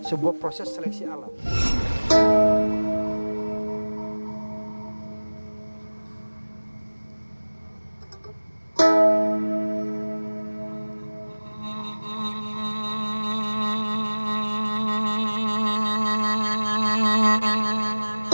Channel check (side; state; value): both; inverted; correlation -1.00